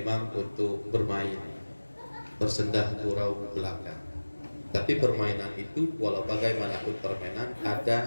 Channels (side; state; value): both; inverted; correlation -1.00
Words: untuk bermain, bersendah gurau belaka. Tapi permainan itu, walau bagaimanapun permainan,